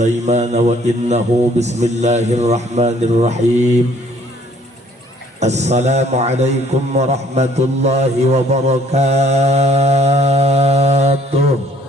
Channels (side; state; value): both; normal; correlation 0.60